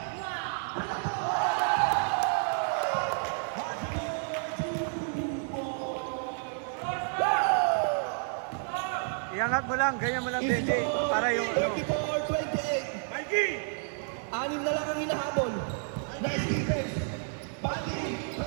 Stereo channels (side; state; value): left; silent; 58 dB below the other